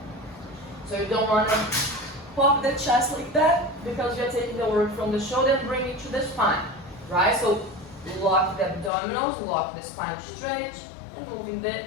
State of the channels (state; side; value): drops out; right; at 8.9 s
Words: So you don't want to pop the chest like that because you're taking the work from the shoulder and bring it to the spine, right? So lock the abdominals, lock the spine straight, and moving the